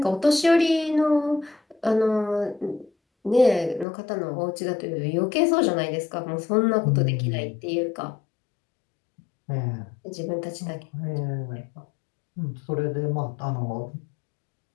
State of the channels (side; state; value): right; drops out; at 3.9 s